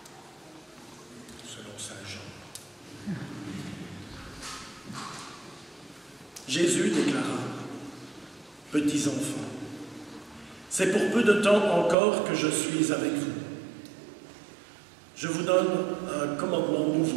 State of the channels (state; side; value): drops out; left; at 12.0 s